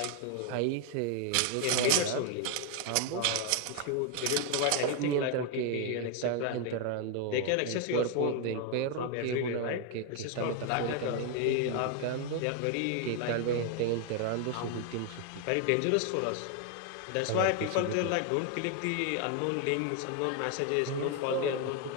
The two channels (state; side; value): different; both; correlation 0.01